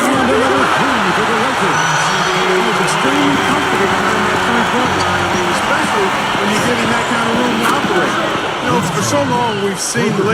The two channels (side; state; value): both; identical; correlation 1.00